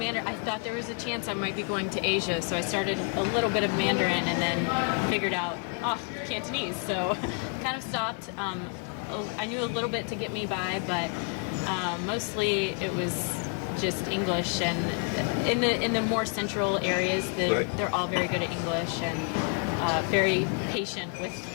I thought there was a chance I might be going to Asia, so I started a little bit of Mandarin and then figured out, Cantonese. So kind of stopped. I knew a little bit to get me by, but mostly it was just English. And in the more central areas, they're all very good at English and very patient with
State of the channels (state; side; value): quieter; right; 38.6 dB